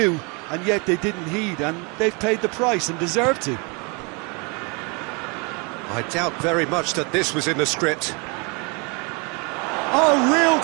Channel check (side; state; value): left; quieter; 31.6 dB